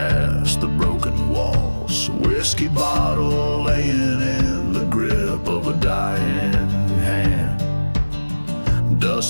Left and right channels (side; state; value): both; inverted; correlation -1.00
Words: the broken walls. Whiskey bottle laying in the grip of a dying hand.